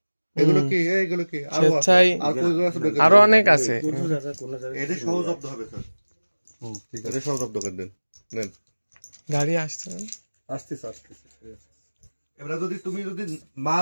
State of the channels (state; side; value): inverted; both; correlation -1.00